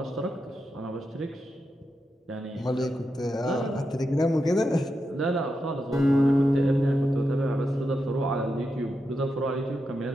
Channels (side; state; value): both; normal; correlation 0.87